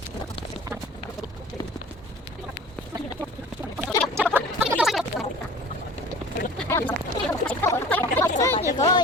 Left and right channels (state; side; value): normal; both; correlation 0.43